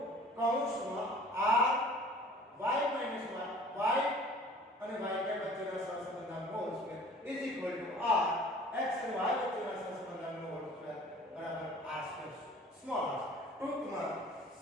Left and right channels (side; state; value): both; normal; correlation 0.48